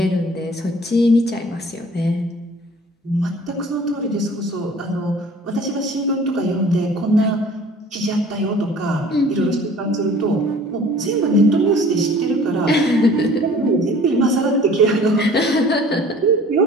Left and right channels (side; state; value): both; normal; correlation 0.49